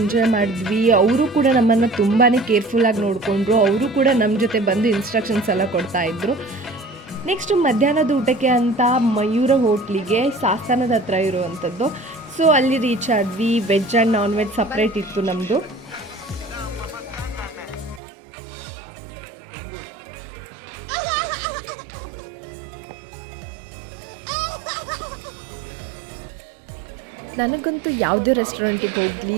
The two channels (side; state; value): left; drops out; at 18.0 s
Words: ಮಾಡಿದ್ವಿ. ಅವರು ಕೂಡ ನಮ್ಮನ್ನು ತುಂಬಾ ಕೇರ್ಫುಲ್ಲಾಗಿ ನೋಡಿಕೊಂಡ್ರು. ಅವರು ಕೂಡ ನಮ್ಮ ಜೊತೆ ಬಂದು ಇನ್ಸ್ಟ್ರಕ್ಷನ್ಸ್ ಎಲ್ಲ ಕೊಡ್ತಾಯಿದ್ರು. ನೆಕ್ಸ್ಟು ಮಧ್ಯಾಹ್ನದ ಊಟಕ್ಕೆ ಅಂತ ಮಯೂರ ಹೋಟ್ಲಿಗೆ ಸಾಸ್ತಾನದ ಹತ್ರ ಇರುವಂಥದ್ದು. ಸೊ ಅಲ್ಲಿ ರೀಚ್ ಆದ್ವಿ. Veg and non veg separate ಇತ್ತು ನಮ್ಮದು. ನನಗಂತೂ ಯಾವುದೇ ರೆಸ್ಟೋರೆಂಟಿಗೆ ಹೋಗಲಿ